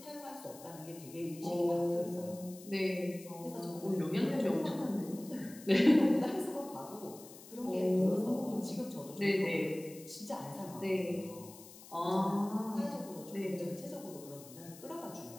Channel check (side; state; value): left; noise; hiss, 18 dB below the sound